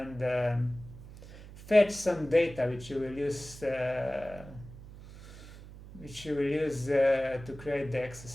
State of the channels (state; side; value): noise; right; hum, 16 dB below the sound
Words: fetch some data which you will use to create the